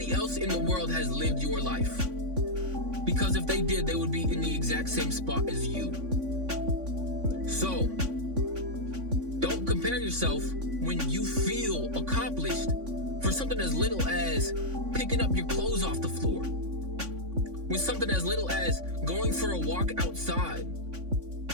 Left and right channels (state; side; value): late; left; 3.5 ms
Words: else in the world has lived your life. Because if they did, they would be in the exact same spot as you. So, don't compare yourself when you feel accomplished for something as little as picking up your clothes off the floor. With something as little as going for a walk outside.